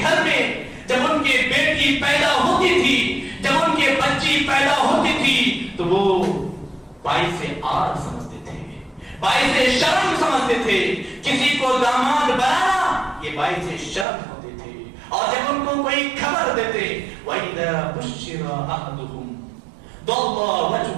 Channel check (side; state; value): left; drops out; at 14.1 s